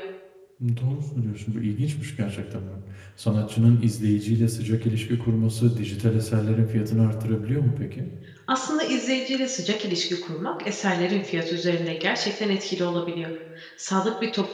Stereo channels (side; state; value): both; identical; correlation 1.00